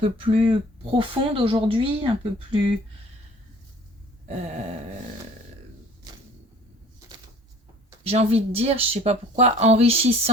plus profonde aujourd'hui, un peu plus... j'ai envie de dire, je sais pas pourquoi,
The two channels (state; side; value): normal; both; correlation 0.51